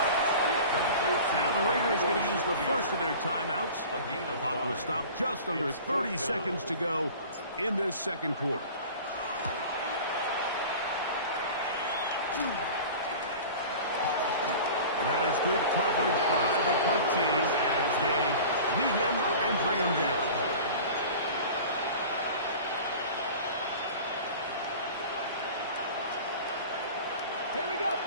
Now the Raiders going to use the first of their timeouts. The clock will stop just under 30 seconds to go in this second quarter. And that is good coverage by the punt team as they meet him and bring him down. Here we go.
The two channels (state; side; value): inverted; both; correlation -0.39